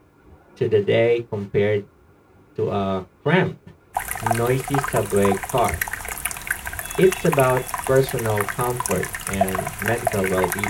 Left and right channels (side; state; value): both; identical; correlation 1.00